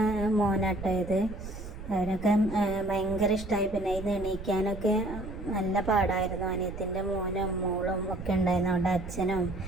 മോനാട്ടോ ഇത്. അവരൊക്കെ ഭയങ്കര ഇഷ്ടമായി. പിന്നെ ഇത് എണീക്കാനൊക്കെ നല്ല പാടായിരുന്നു. അനിയത്തിൻ്റെ മോനും മോളും ഒക്കെ ഉണ്ടായിരുന്നു. അവളുടെ അച്ഛനും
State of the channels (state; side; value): noise; right; rumble, 11 dB below the sound